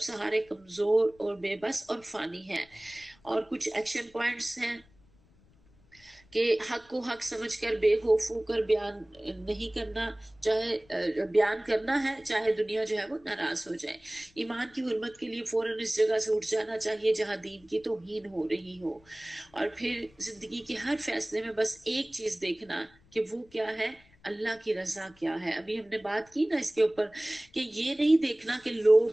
سہارے کمزور اور بے بس اور فانی ہیں۔ اور کچھ ایکشن پوائنٹس ہیں کہ حق کو حق سمجھ کر بے خوف ہو کر بیان نہیں کرنا، چاہے بیان کرنا ہے چاہے دنیا جو ہے وہ ناراض ہو جائے۔ ایمان کی حرمت کے لیے فوراً اس جگہ سے اٹھ جانا چاہیے جہاں دین کی توہین ہو رہی ہو، اور پھر زندگی کے ہر فیصلے میں بس ایک چیز دیکھنا کہ وہ کیا ہے، اللہ کی رضا کیا ہے۔ ابھی ہم نے بات کی نا اس کے اوپر کہ یہ نہیں دیکھنا کہ لوگ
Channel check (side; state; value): left; noise; rumble, 29 dB below the sound